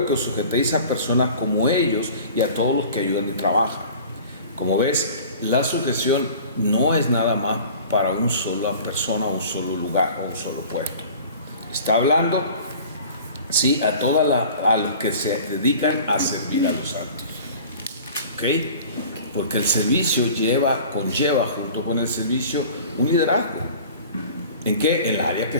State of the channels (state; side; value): inverted; both; correlation -0.43